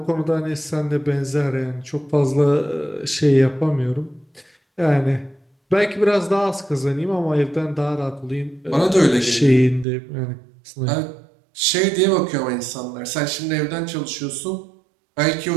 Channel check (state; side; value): drops out; left; at 9.9 s